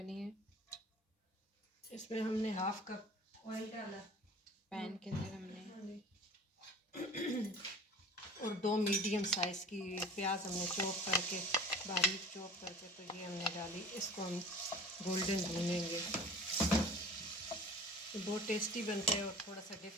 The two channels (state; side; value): normal; both; correlation 0.43